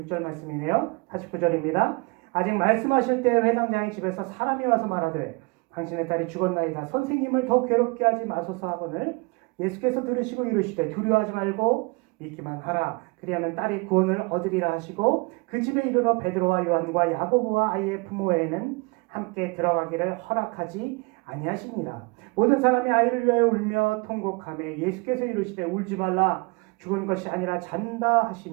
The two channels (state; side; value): quieter; left; 29.0 dB